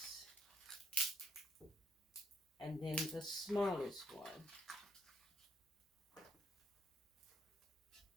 And then the smallest one.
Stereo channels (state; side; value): normal; both; correlation 0.72